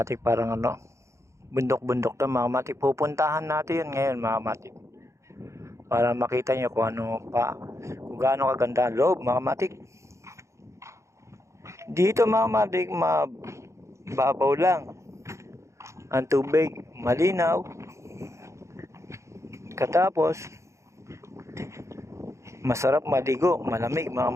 parang bundok-bundok to mga matik. Pupuntahan natin yun ngayon mga matik. Para makita niyo kung gaano kaganda ang loob mga matik. Dito mga matik, mababaw lang. Ang tubig, malinaw. Katapos, masarap maligo, malamig mga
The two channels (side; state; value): left; late; 0.14 ms